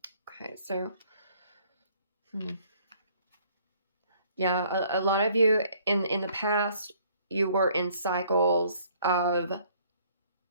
Okay, so yeah, a lot of you in the past, you were in cycles of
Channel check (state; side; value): inverted; both; correlation -0.60